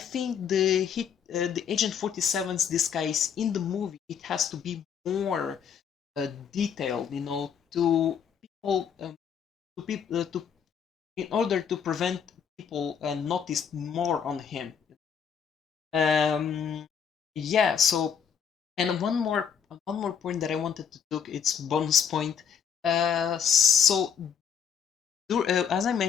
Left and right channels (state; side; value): quieter; right; 7.5 dB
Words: the Agent 47's disguise in the movie, it has to be more detailed, you know, to people, to in order to prevent people notice more on him. Um, yeah. So, and one more point that I wanted to took, it's bonus point. So as I